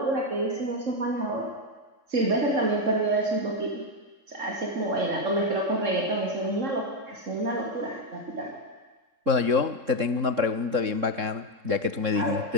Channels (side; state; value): left; late; 3.7 ms